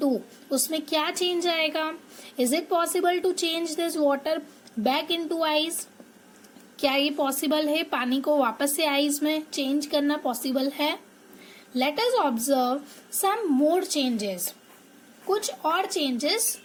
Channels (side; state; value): both; identical; correlation 1.00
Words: उसमें क्या चेंज आएगा? Is it possible to change this water back into ice? क्या ये पॉसिबल है, पानी को वापस से आइस में चेंज करना पॉसिबल है? Let us observe some more changes. कुछ और चेंजेस